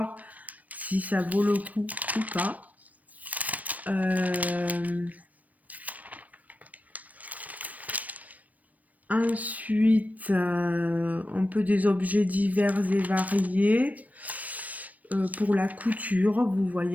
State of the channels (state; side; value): late; left; 0.073 ms